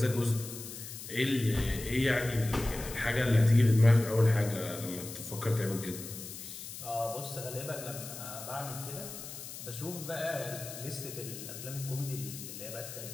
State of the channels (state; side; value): noise; left; hiss, 11 dB below the sound